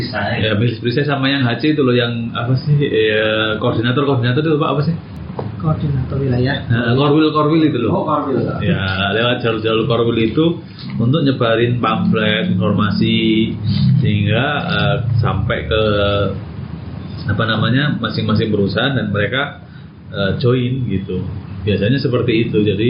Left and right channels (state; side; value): identical; both; correlation 1.00